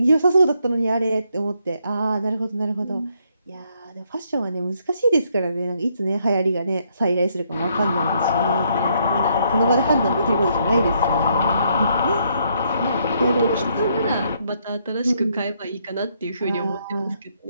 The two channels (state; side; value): inverted; both; correlation -0.73